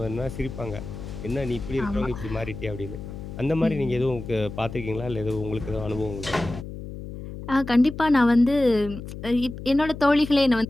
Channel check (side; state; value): left; noise; hum, 10 dB below the sound